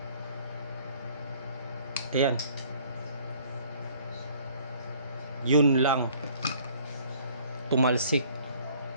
Ayan. Yun lang. Tumalsik.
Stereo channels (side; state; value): both; inverted; correlation -0.57